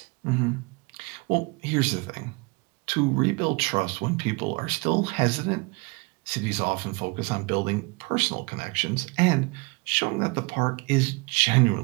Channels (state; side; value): quieter; left; 27.6 dB